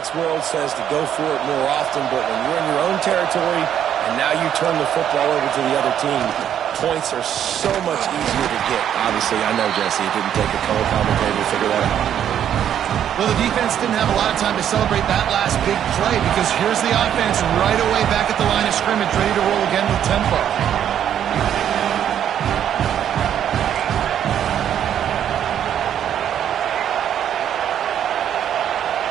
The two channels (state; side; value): quieter; left; 9.8 dB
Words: world says to go for it more often, but when you're in your own territory and now you turn the football over to the other team, points are so much easier to get. Obviously, I know, Jesse, it didn't take a color commentator to figure that out. Well, the defense didn't have a lot of time to celebrate that last big play, because here's the offense right away back at the line of scrimmage, ready to roll again with tempo.